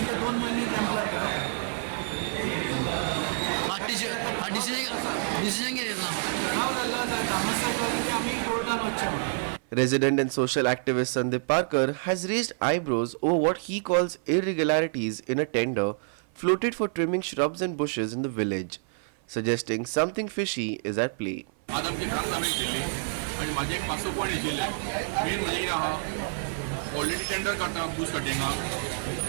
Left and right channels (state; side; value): silent; left; 56 dB below the other